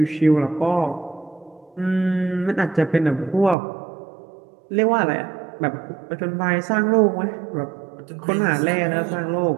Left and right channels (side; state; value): left; drops out; at 3.6 s